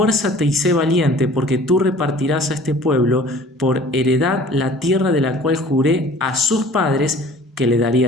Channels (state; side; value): normal; both; correlation 0.48